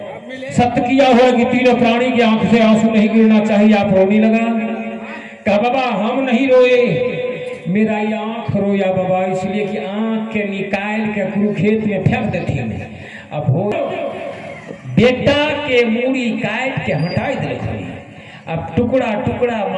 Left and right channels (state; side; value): identical; both; correlation 1.00